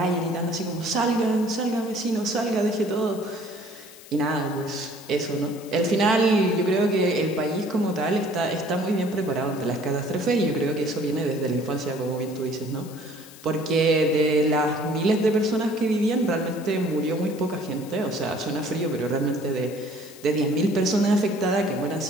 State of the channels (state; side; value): noise; left; hiss, 19 dB below the sound